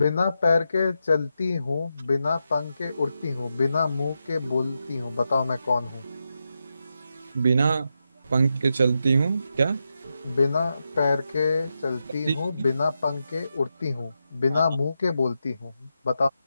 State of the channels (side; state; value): both; inverted; correlation -0.87